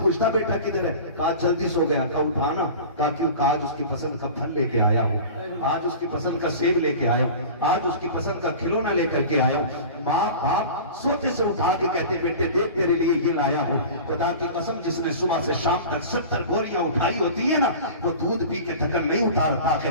پوچھتا بیٹا کدھر ہے، کہا جلدی سو گیا، کہا اٹھانا، کہا کیوں، کہا آج اس کی پسند کا پھل لے کے آیا ہوں، آج اس کی پسند کا سیب لے کے آیا ہوں، آج اس کی پسند کا کھلونا لے کر کے آیا ہوں۔ باپ سوتے سے اٹھا کے کہتے بیٹے دیکھ تیرے لیے یہ لایا ہوں، خدا کی قسم جس نے صبح سے شام تک 70 بوریاں اٹھائی ہوتی ہے نا، وہ دودھ پی کے تھکن نہیں اتارتا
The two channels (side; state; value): both; inverted; correlation -0.37